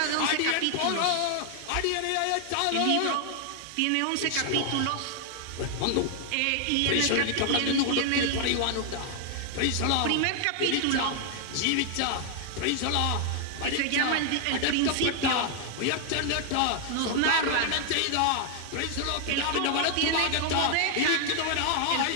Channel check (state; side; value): different; both; correlation 0.00